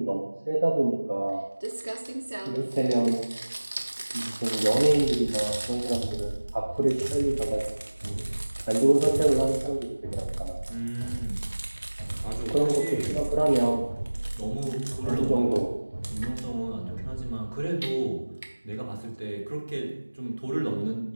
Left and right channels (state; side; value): inverted; both; correlation -1.00